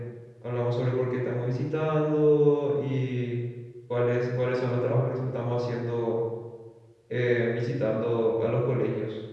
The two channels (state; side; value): identical; both; correlation 1.00